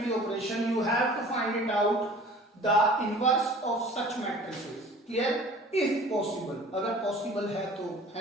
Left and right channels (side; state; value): both; normal; correlation 0.47